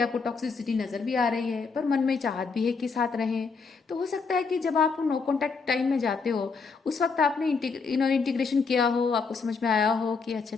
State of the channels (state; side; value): quieter; right; 4.9 dB